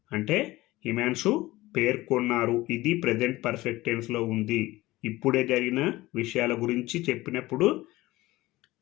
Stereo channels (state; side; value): quieter; right; 18.5 dB